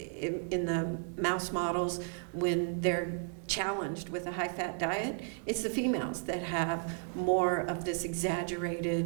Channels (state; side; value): silent; left; 55 dB below the other